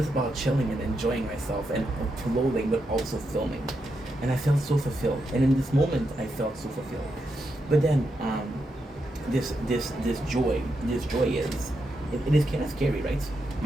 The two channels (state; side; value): normal; both; correlation 0.84